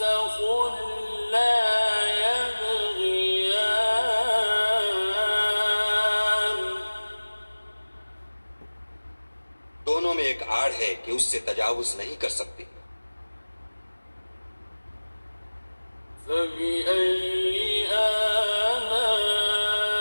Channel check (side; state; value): both; inverted; correlation -1.00